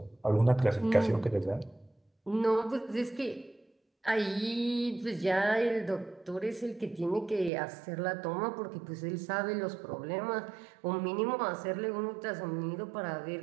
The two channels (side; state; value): left; drops out; at 7.5 s